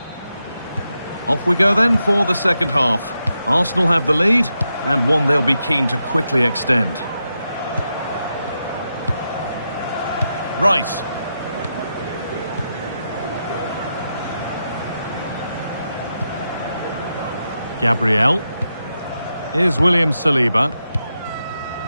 Off we go then for the second half. Arsenal have the lead, and one they'll be keen to quickly extend. Rice. Gabriel. Here's William Saliba.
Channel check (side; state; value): both; inverted; correlation -0.86